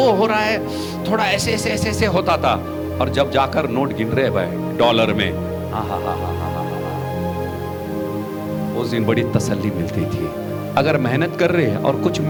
हो रहा है, थोड़ा ऐसे ऐसे ऐसे ऐसे होता था। और जब जाकर नोट गिन रहे भाई डॉलर में, उस दिन बड़ी तसल्ली मिलती थी। अगर मेहनत कर रहे हैं और कुछ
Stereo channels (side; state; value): both; identical; correlation 1.00